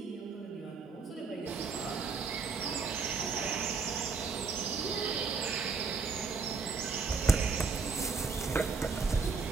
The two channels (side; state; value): left; quieter; 5.0 dB